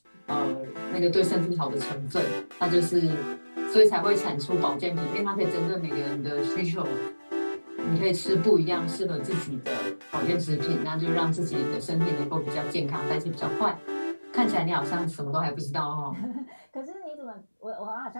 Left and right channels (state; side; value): inverted; both; correlation -1.00